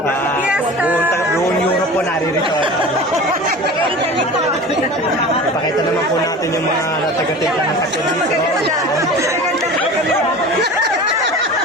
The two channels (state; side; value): normal; both; correlation 0.36